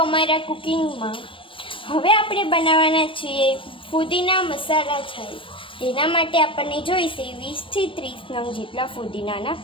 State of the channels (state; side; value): late; right; 0.25 ms